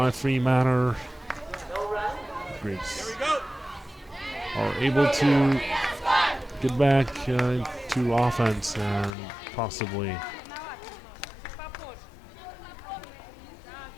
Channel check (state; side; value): drops out; right; at 9.2 s